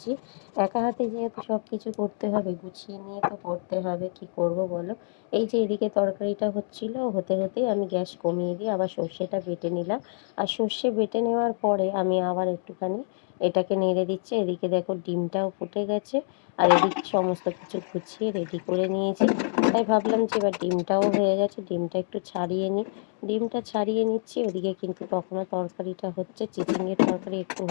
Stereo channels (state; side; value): silent; right; digital silence